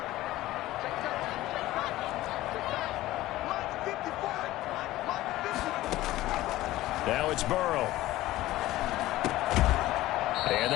Now it's Burrow. And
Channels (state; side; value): quieter; right; 16.3 dB